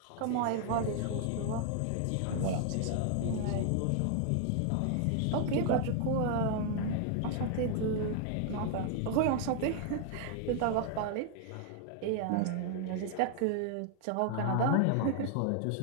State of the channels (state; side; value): different; both; correlation 0.00